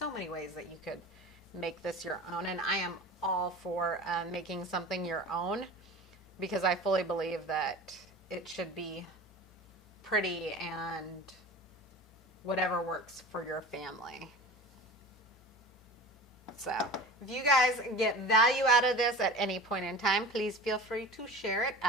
many ways that you could make this your own, and I am all for making something your own because I fully believe that it should be pretty and whatever works for your family. So if you guys get value out of this at any point in time, please feel free to share it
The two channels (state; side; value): normal; both; correlation 0.36